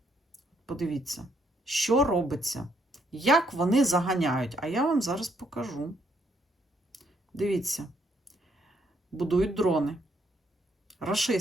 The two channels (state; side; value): normal; both; correlation 0.72